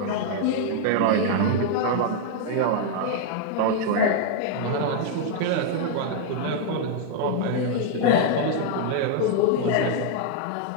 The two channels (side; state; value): both; different; correlation 0.00